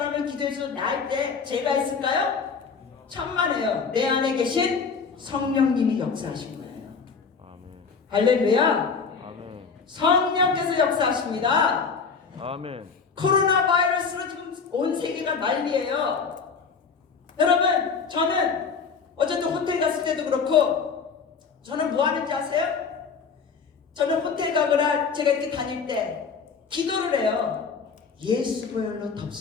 기도해서 나을 때 제가 있을까요? 천만에요. 내 안에 계신 성령님이 역사하신 거예요. 할렐루야. 아멘. 성령께서 역사하십니다. 아멘. 코로나 바이러스로 지금 온 세계가 난리예요. 여러분 저는 어쨌든 호텔 갔을 때도 그렇고 저는 뭐 하는지 아세요? 저는 호텔 가거나 제가 이렇게 다닐 때 기도를 해요. 예수 보혈로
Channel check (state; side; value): quieter; right; 5.5 dB